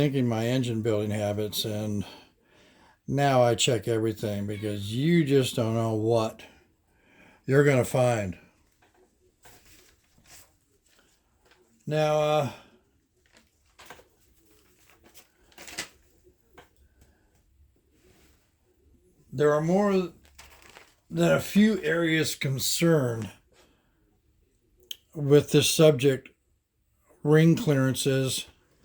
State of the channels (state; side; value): identical; both; correlation 1.00